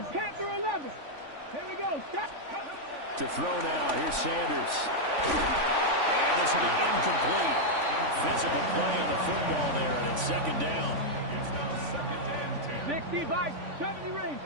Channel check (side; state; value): left; late; 3.5 ms